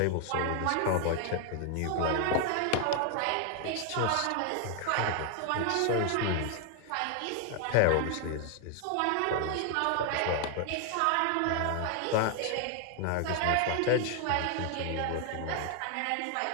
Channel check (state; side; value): different; both; correlation 0.00